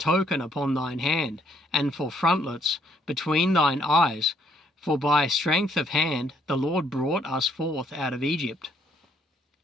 upon thine hand, and for frontlets between thine eyes, for by strength of hand the Lord brought us forth out of Egypt.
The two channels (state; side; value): normal; both; correlation 0.68